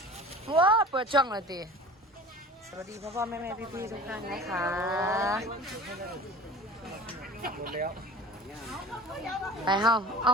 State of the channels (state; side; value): normal; both; correlation 0.41